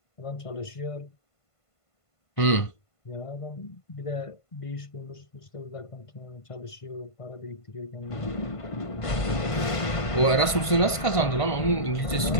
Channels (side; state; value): right; late; 1.5 ms